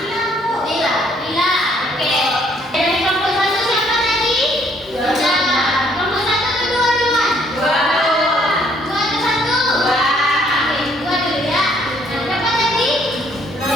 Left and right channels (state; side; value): normal; both; correlation 0.65